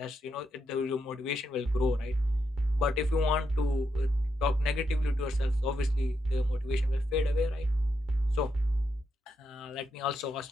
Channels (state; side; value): normal; both; correlation 0.82